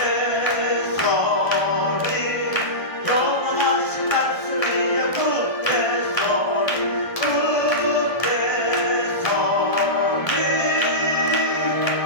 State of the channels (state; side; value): late; right; 1.3 ms